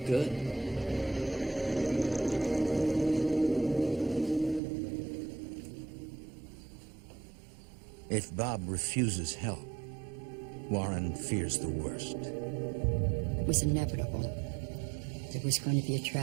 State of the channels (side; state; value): left; drops out; at 4.6 s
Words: Good. If Bob refuses help, Warren fears the worst. It was inevitable. There was going to be a